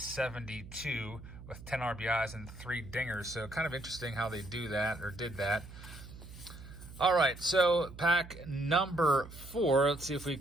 with 10 RBIs and 3 dingers. So kind of interesting how they do that, or did that. All right, so pack number 4. Let's see if we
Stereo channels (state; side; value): noise; right; hum, 15 dB below the sound